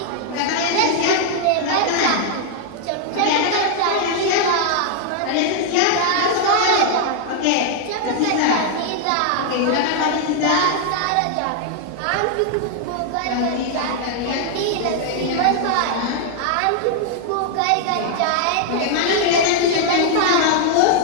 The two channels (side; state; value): both; different; correlation 0.00